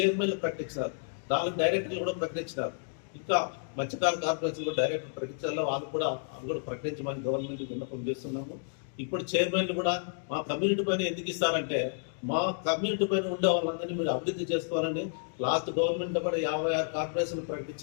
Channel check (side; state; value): right; silent; digital silence